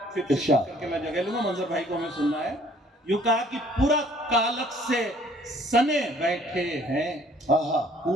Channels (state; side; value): normal; both; correlation 0.58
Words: फिर इरशाद। करके मैं जगह लूंगा, मंजर भाई को हमें सुनना है। यूं कहा कि पूरा कालक से सने बैठे हैं, हाँ